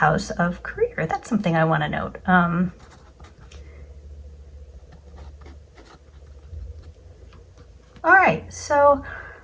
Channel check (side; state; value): both; identical; correlation 1.00